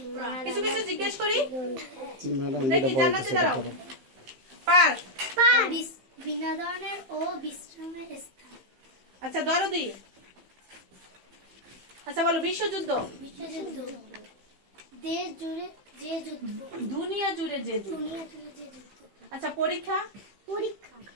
কিছু কিছু জিজ্ঞেস করি। দেখি, জান্নাতে দাঁড়াও। পার্ক, বিনোদনের ও বিশ্রামের স্থান। আচ্ছা দরদি। আচ্ছা বলো, বিশ্বযুদ্ধ। বিশ্বযুদ্ধ, দেশ জুড়ে যে যুদ্ধ। দুনিয়া জুড়ে যে যুদ্ধ। দুনিয়া জুড়ে যে যুদ্ধ। আচ্ছা পরীক্ষা, পরীক্ষা,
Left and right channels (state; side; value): late; left; 15 ms